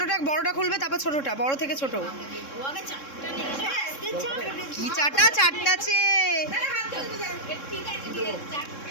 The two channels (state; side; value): late; right; 3.7 ms